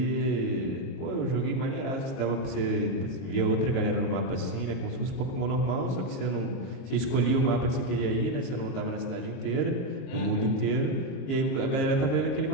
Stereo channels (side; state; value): right; late; 22 ms